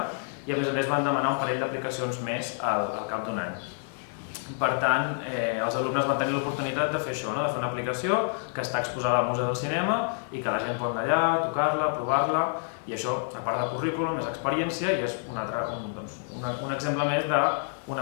i a més van demanar un parell d'aplicacions més al cap d'un any. Per tant, els alumnes van tenir l'oportunitat de fer això, de fer una aplicació que està exposada al Museu del Cinema i que la gent pot anar allà, tocar-la, provar-la, i això, a part de currículum, és experiència i és un exemple més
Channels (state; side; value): silent; right; digital silence